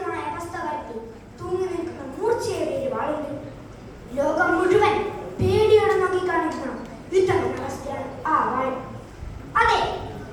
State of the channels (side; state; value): both; identical; correlation 1.00